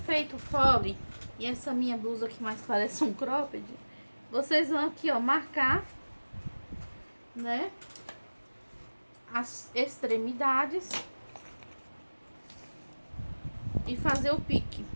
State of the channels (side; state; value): both; inverted; correlation -1.00